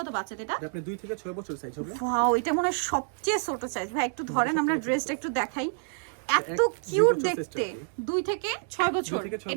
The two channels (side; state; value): left; silent; digital silence